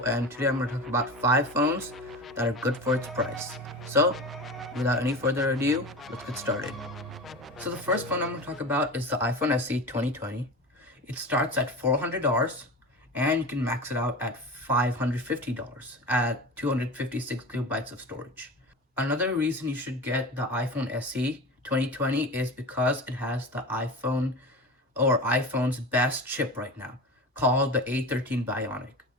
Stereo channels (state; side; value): normal; both; correlation 0.30